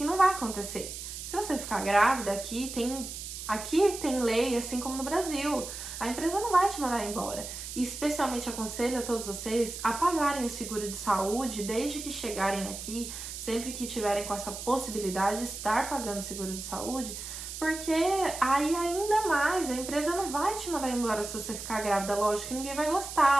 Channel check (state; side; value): noise; right; hiss, 9 dB below the sound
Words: não vai acontecer. Se você ficar grávida, aqui tem lei, assim como no Brasil. A empresa não vai te mandar embora. E especialmente aconselho a todos vocês a pagarem o seguro de saúde desde que chegarem aqui, sempre que tiverem com essa possibilidade de estar pagando seguro de saúde, porque aí ainda mais, a empresa não vai te mandar embora se você ficar grávida. Lógico que ninguém vai